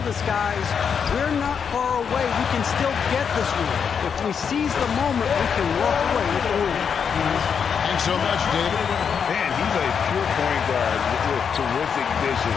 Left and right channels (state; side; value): quieter; right; 6.9 dB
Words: his guys, we're not far away. We can still get this one. If we seize the moment, we can walk away with the win. Thanks so much, David. Man, he's a pure point guard with terrific vision.